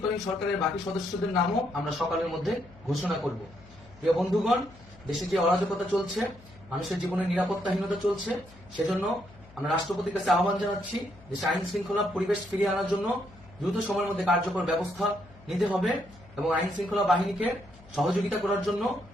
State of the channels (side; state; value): left; noise; hum, 23 dB below the sound